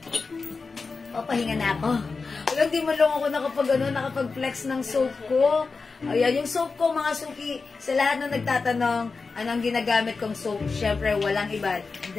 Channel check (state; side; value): quieter; right; 4.4 dB